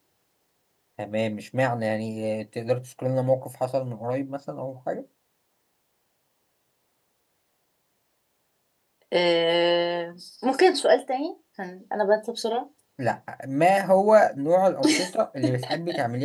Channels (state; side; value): identical; both; correlation 1.00